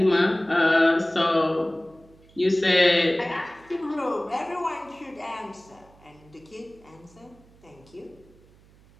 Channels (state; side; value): noise; right; hum, 27 dB below the sound